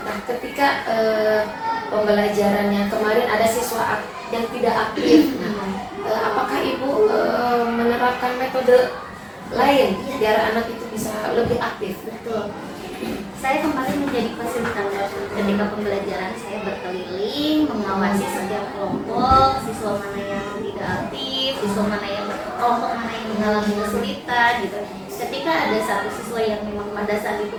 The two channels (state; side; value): identical; both; correlation 1.00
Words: ketika pembelajarannya kemarin ada siswa yang tidak aktif, nah, apakah ibu menerapkan metode lain biar anak itu bisa lebih aktif? Betul. Saya kemarin menjadi fasilitator ketika pembelajaran. Saya berkeliling mengawasi setiap kelompok, siswa mana yang tidak aktif, siswa mana yang kelompok mana yang mengalami kesulitan gitu. Ketika ada satu siswa yang memang pada saat